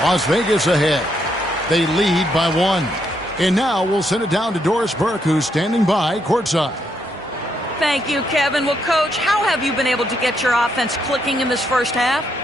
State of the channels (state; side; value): normal; both; correlation 0.76